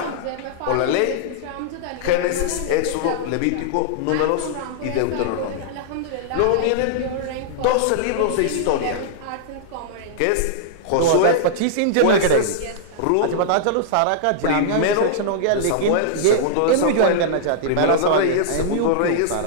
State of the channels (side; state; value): both; different; correlation -0.02